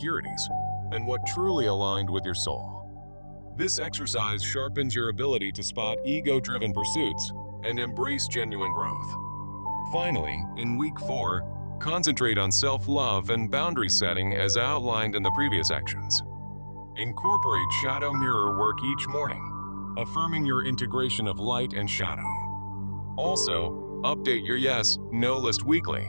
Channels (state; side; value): inverted; both; correlation -1.00